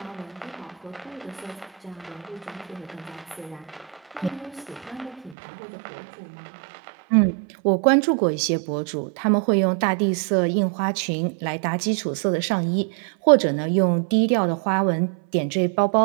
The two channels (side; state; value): left; drops out; at 5.4 s